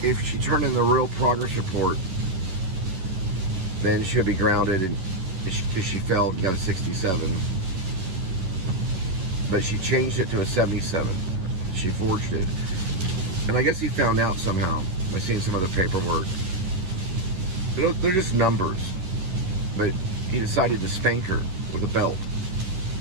if she turned in the real progress report, then she would be grounded because she failed and got a 67. But she changed it to a 77. She forged it. And I guess he found out somehow by seeing some of the paperwork. They're just numbers. But he decided to spank her with a belt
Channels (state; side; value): late; left; 11 ms